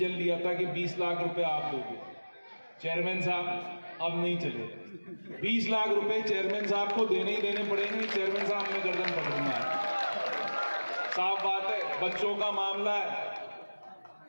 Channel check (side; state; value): both; inverted; correlation -1.00